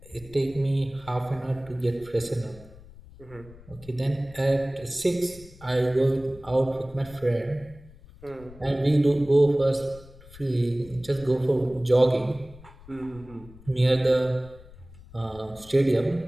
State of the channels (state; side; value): noise; left; rumble, 21 dB below the sound